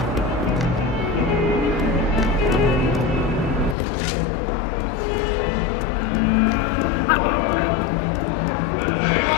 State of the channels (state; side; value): drops out; right; at 3.8 s